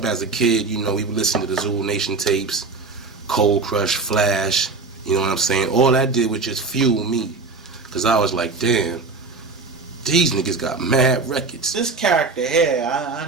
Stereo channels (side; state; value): left; quieter; 4.1 dB